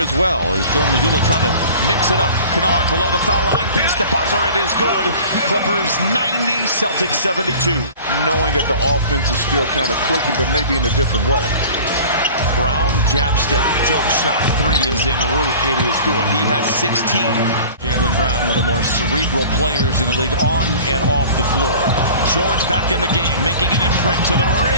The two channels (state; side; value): inverted; both; correlation -0.42